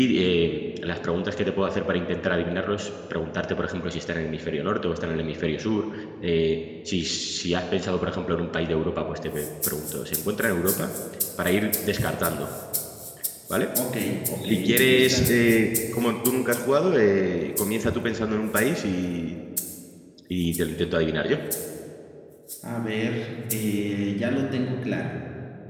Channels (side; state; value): both; identical; correlation 1.00